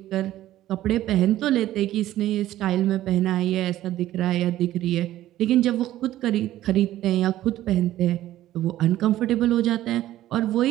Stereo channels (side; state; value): left; quieter; 14.0 dB